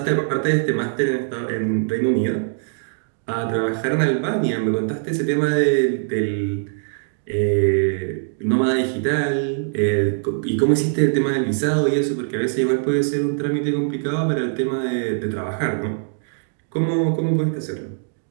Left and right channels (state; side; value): silent; left; digital silence